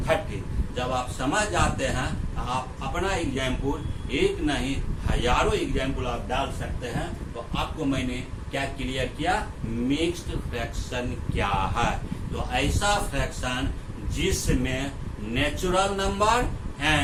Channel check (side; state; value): both; identical; correlation 1.00